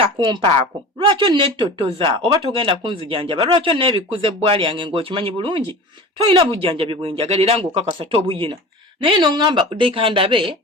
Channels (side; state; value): both; normal; correlation 0.36